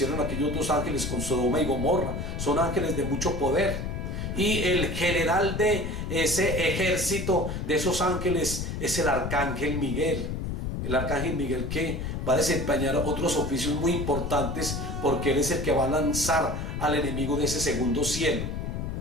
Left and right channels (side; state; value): left; noise; rumble, 4 dB below the sound